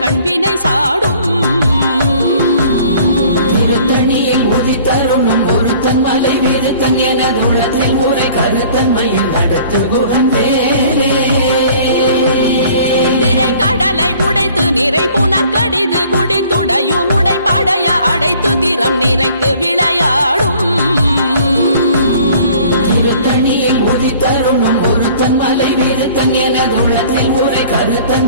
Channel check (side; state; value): both; inverted; correlation -0.53